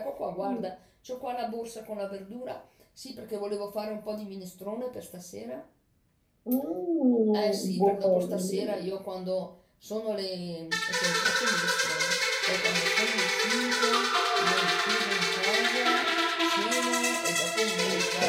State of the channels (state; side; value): identical; both; correlation 1.00